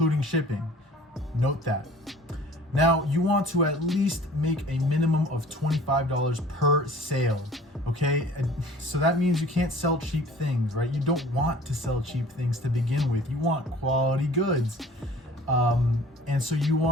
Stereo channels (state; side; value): normal; both; correlation 0.48